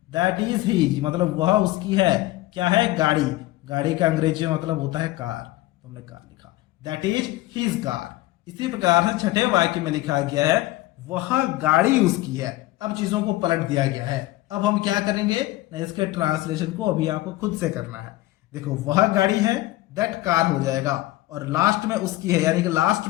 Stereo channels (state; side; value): quieter; right; 17.3 dB